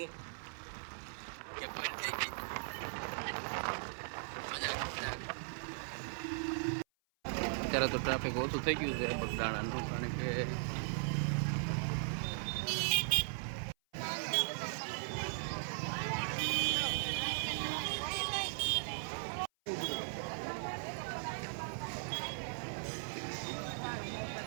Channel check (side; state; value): left; silent; 52 dB below the other